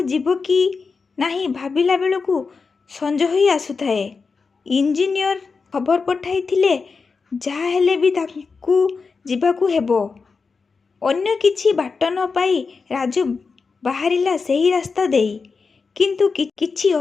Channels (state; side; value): quieter; right; 4.8 dB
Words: ଯିବ କି ନାହିଁ ଭାବିଲା ବେଳକୁ ସଞ୍ଜ ହୋଇ ଆସୁଥାଏ। ଇଞ୍ଜିନିୟର ଖବର ପଠାଇଥିଲେ ଯାହା ହେଲେ ବି ତାଙ୍କୁ ଯିବାକୁ ହେବ। ଅନ୍ୟ କିଛି ବାଟ ନ ପାଇ ରାଜୁ ବାହାରିଲା ସେହି ରାସ୍ତା ଦେଇ। କିନ୍ତୁ କିଛି